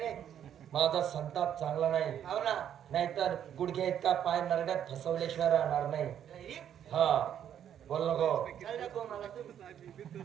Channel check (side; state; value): left; quieter; 9.7 dB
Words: माझा संताप चांगला नाही. हो ना नाहीतर गुडघ्या इतका पाय नरड्यात फसवल्याशिवाय राहणार नाही. हा बोल नको.